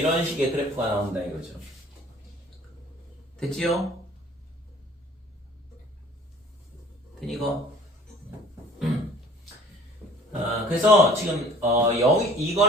식의 그래프가 나온다 이거죠. 됐지요? 되니 이거? 그래서 지금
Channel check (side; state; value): both; normal; correlation 0.50